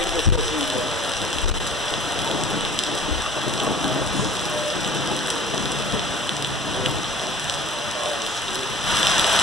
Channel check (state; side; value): normal; both; correlation 0.47